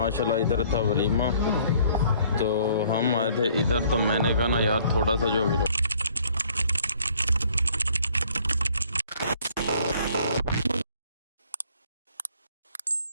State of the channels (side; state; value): both; inverted; correlation -0.60